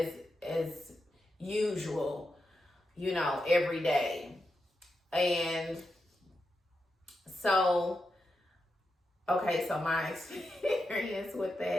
usual, every day. And so, okay, so my experience with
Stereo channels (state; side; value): normal; both; correlation 0.87